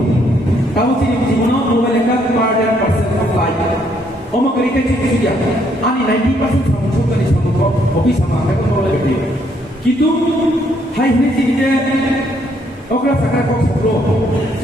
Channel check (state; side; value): normal; both; correlation 0.70